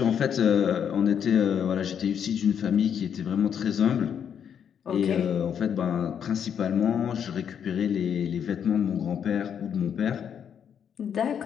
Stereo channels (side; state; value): right; quieter; 8.2 dB